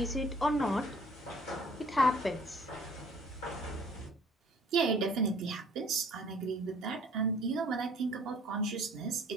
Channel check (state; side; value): normal; both; correlation 0.54